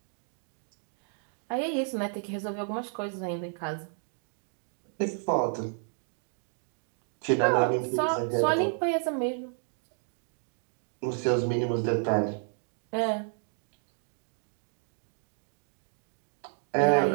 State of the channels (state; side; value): silent; left; 57 dB below the other